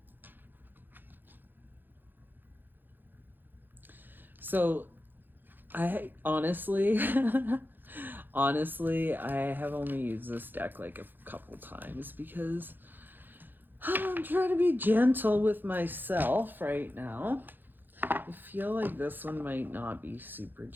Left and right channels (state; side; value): late; left; 0.092 ms